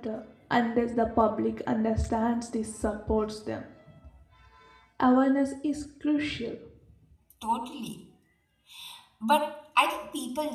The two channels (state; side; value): identical; both; correlation 1.00